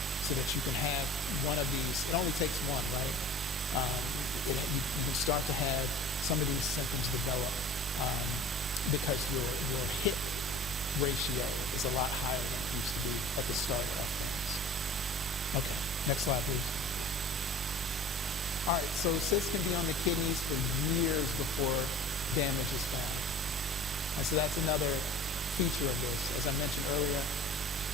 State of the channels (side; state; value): both; normal; correlation 0.40